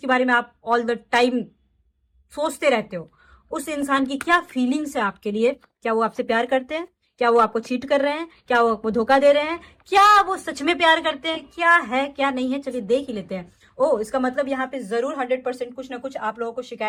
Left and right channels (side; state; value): both; identical; correlation 1.00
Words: बारे में आप ऑल द टाइम सोचते रहते हो। उस इंसान की क्या फीलिंग्स है आपके लिए? क्या वो आपसे प्यार करते हैं? क्या वो आपको चीट कर रहे हैं? क्या वो आपको धोखा दे रहे हैं? क्या वो सच में प्यार करते हैं? क्या है क्या नहीं है, चलिए देख ही लेते हैं। ओ, इसका मतलब यहाँ पे जरूर 100% कुछ ना कुछ आप लोगों को